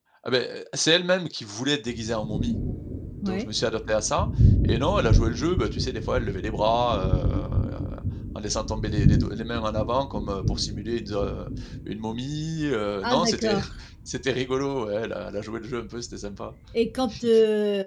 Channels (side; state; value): both; identical; correlation 1.00